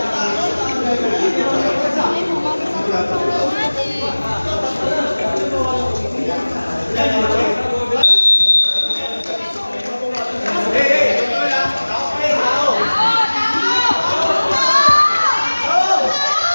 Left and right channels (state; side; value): inverted; both; correlation -1.00